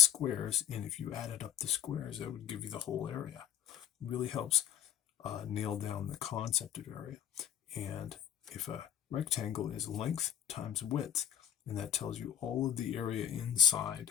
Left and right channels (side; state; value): right; quieter; 10.0 dB